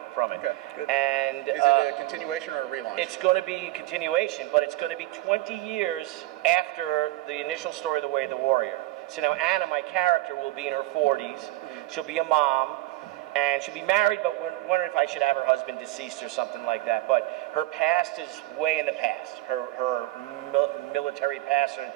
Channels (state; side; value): quieter; left; 17.9 dB